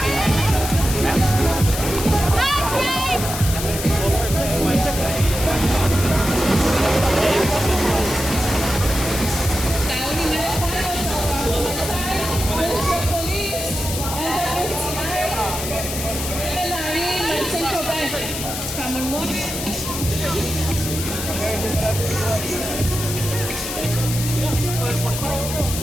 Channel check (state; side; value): noise; left; hiss, 6 dB below the sound